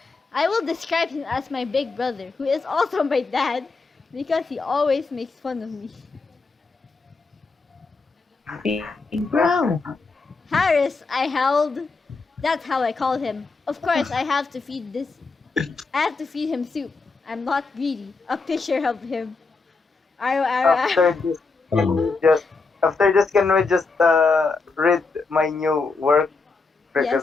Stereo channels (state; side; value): quieter; right; 4.1 dB